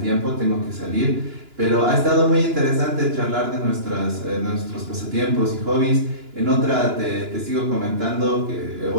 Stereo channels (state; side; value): late; left; 2.9 ms